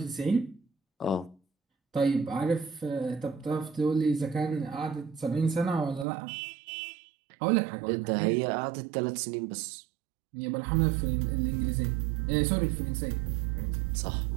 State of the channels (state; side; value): drops out; left; at 6.1 s